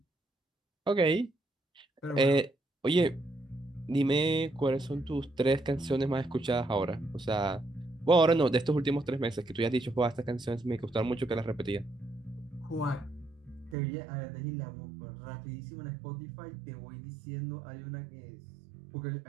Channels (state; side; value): drops out; left; at 13.8 s